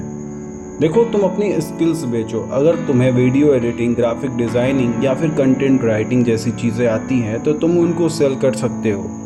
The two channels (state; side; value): identical; both; correlation 1.00